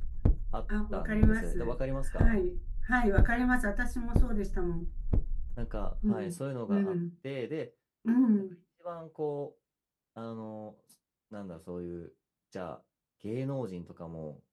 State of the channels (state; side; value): identical; both; correlation 1.00